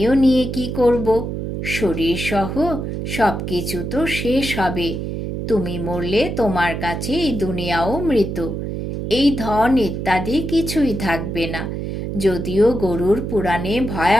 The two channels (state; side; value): noise; right; hum, 4 dB below the sound